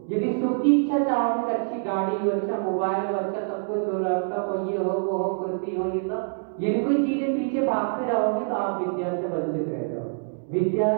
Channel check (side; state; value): left; silent; digital silence